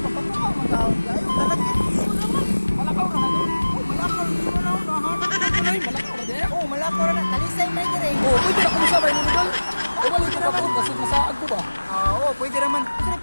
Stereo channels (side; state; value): both; inverted; correlation -1.00